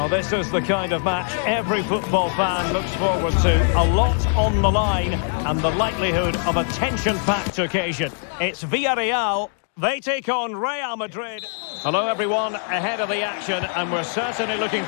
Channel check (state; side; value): silent; right; 57 dB below the other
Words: this is the kind of match every football fan looks forward to. A lot on the line and the likelihood of a tension-packed occasion. It's Villarreal They take on Real Madrid. Hello everyone, ahead of the action, and we're certainly looking